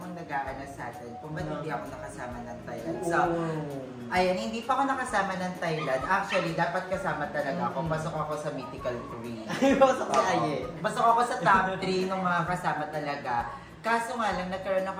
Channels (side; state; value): both; identical; correlation 1.00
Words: nag-aanas sa atin kung ba't hindi ako nakasama ng Thailand. So, ayan, hindi pa ako nakasama ng Thailand. Actually, dapat kasama talaga ako. Pasok ako sa Mythical 3. Pasok si Aye. Pasok ako sa top 3 ng mga kasama talaga. Kaso nga lang, nagkaroon